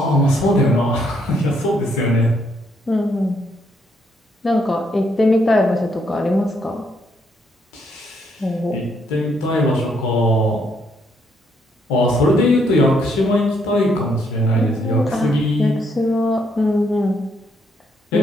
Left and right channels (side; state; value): both; normal; correlation 0.73